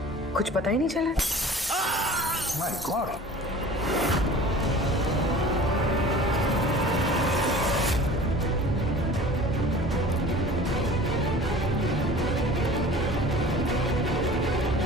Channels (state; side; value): normal; both; correlation 0.43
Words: कुछ पता ही नहीं चला। My God!